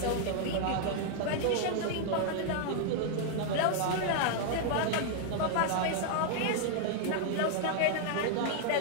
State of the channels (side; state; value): both; different; correlation 0.00